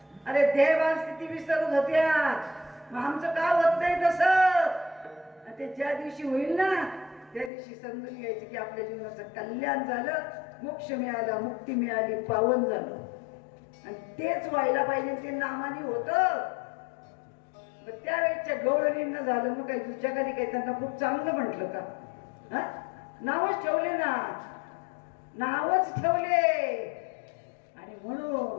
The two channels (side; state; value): right; drops out; at 7.5 s